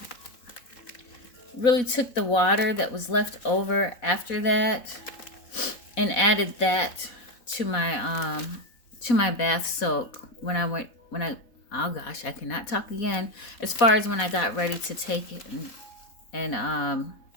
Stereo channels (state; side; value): late; right; 4.1 ms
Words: really took the water that was left over after that and added that to my bath soak when I oh gosh, I cannot talk again. As far as when I got ready to take it and